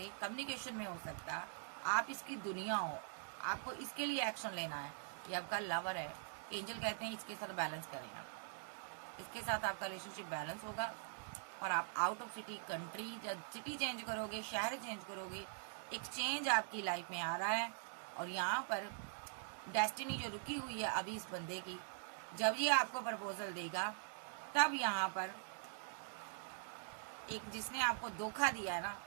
कम्युनिकेशन में हो सकता, आप इसकी दुनिया हो, आपको इसके लिए एक्शन लेना है। ये आपका लवर है, एंजल कहते हैं इसके साथ बैलेंस करें आप, इसके साथ आपका रिलेशनशिप बैलेंस होगा और आप आउट ऑफ सिटी, कंट्री या सिटी चेंज करोगे, शहर चेंज करोगे, एक चेंज आपकी लाइफ में आ रहा है। और यहाँ पर डेस्टिनी जो रुकी हुई है अभी इस बंदे की, जब ये आपको प्रपोजल देगा तब यहाँ पर एक जिसने आपको धोखा दिया है ना,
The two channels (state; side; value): silent; left; digital silence